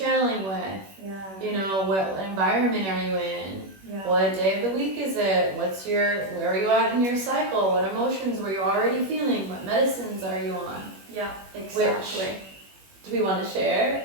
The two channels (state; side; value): late; left; 21 ms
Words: with? Yeah. What environment are you in? Yeah. What day of the week is it? Where are you at in your cycle? What emotions were you already feeling? What medicines are you on? Yeah, exactly. Do we want to